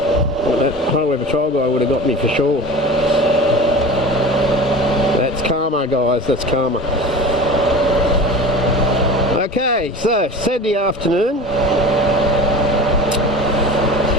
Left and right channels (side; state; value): both; normal; correlation 0.35